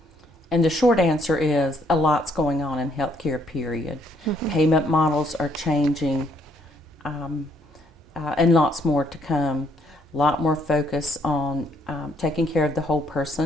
the short answer is a lot's going on in healthcare, period. Payment models are changing, and lots more to come. A lot more focus on taking care of the whole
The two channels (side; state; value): both; normal; correlation 0.69